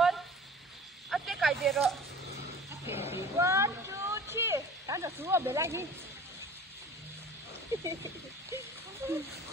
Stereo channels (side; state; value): both; normal; correlation 0.44